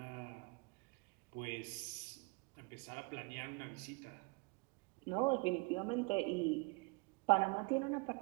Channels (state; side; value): quieter; left; 28.6 dB